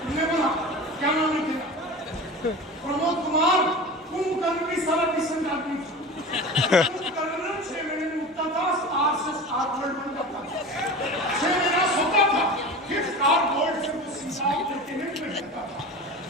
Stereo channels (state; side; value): normal; both; correlation 0.33